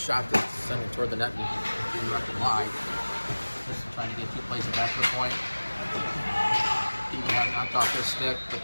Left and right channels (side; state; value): both; inverted; correlation -1.00